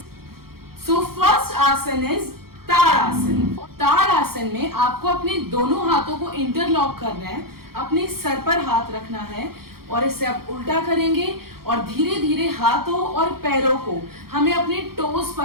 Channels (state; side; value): late; left; 0.94 ms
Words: इज ताड़ासन। ताड़ासन में आपको अपने दोनों हाथों को इंटरलॉक करना है, अपने सर पर हाथ रखना है और इसे आप उल्टा करेंगे और धीरे धीरे हाथों और पैरों को हमें अपने टोस